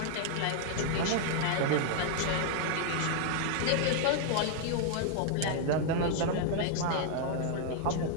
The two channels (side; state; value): both; different; correlation 0.00